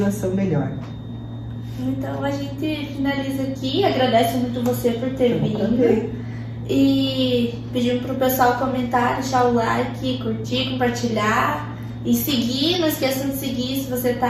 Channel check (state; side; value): identical; both; correlation 1.00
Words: melhor. Então a gente finaliza aqui, agradece muito você por ter vindo. E pedimos para o pessoal comentar, deixar o like, curtir, compartilhar. E seguir, não esqueçam de seguir se você